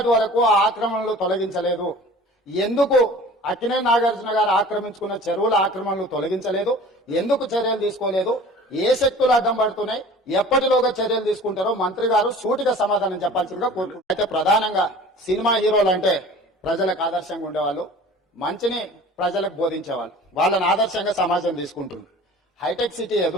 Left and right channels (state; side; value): normal; both; correlation 0.44